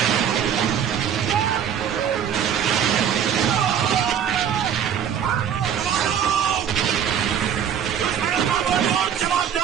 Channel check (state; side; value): quieter; left; 8.8 dB